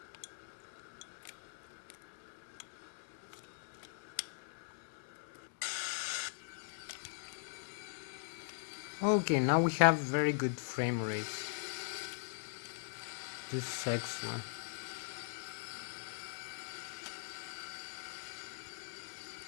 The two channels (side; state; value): right; silent; digital silence